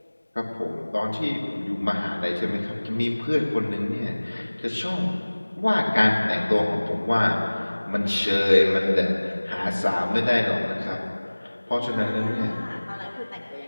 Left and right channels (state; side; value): inverted; both; correlation -1.00